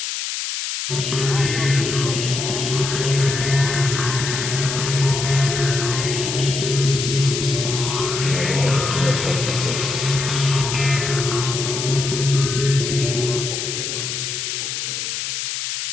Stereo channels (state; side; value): noise; left; hiss, 3 dB below the sound